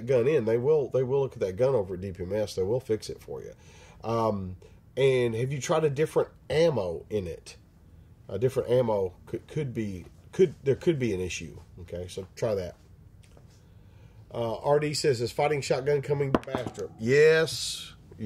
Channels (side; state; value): both; identical; correlation 1.00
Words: gun in. They will look at that gun over at DPMS. They will fix it for you. And have you tried a different ammo in it? A different ammo could be an issue. Okay, so try that. RD says, is fighting shotgun coming to Bastrop? Yes,